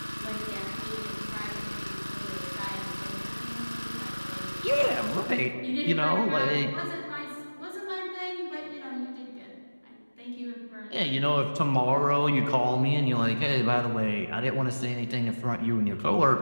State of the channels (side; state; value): both; inverted; correlation -1.00